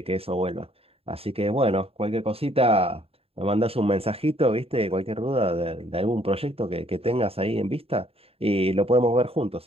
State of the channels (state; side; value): late; left; 0.28 ms